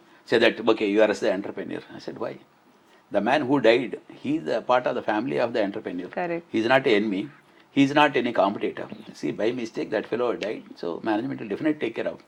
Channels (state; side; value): identical; both; correlation 1.00